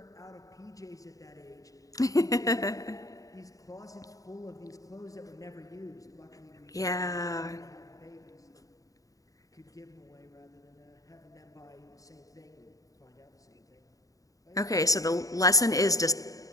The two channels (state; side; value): late; right; 0.17 ms